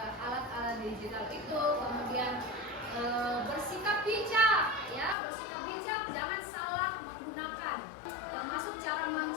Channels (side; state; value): right; drops out; at 5.2 s